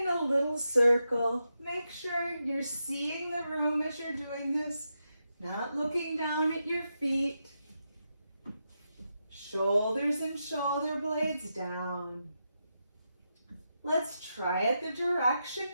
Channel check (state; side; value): inverted; both; correlation -0.86